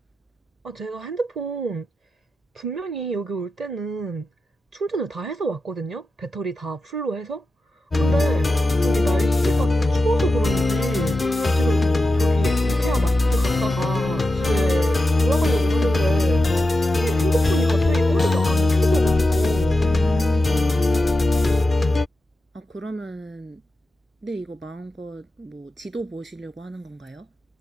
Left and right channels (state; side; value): normal; both; correlation 0.91